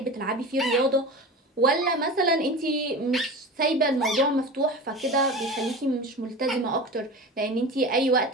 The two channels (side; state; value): both; normal; correlation 0.31